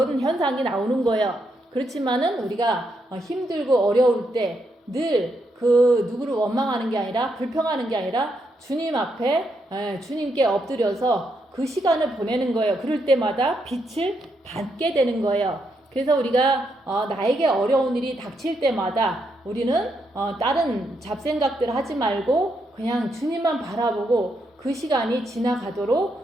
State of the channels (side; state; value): both; normal; correlation 0.79